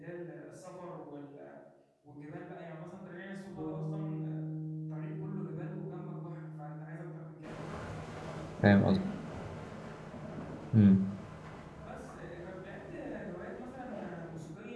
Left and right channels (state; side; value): identical; both; correlation 1.00